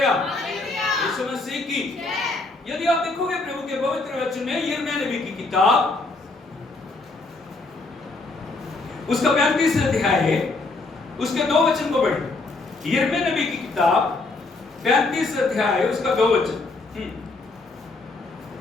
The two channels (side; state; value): right; quieter; 3.4 dB